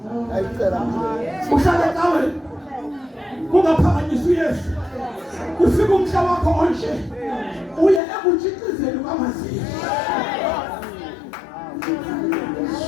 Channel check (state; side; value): drops out; right; at 8.0 s